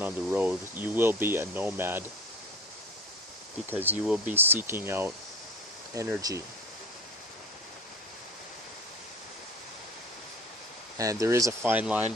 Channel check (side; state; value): both; normal; correlation 0.38